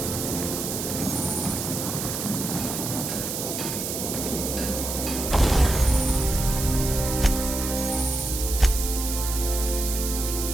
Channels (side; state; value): right; noise; hiss, 4 dB below the sound